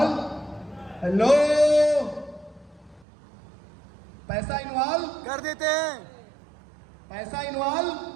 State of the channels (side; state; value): left; drops out; at 3.1 s